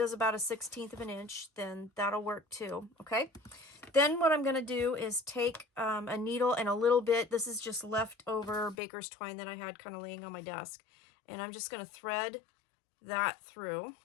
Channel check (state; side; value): drops out; right; at 8.8 s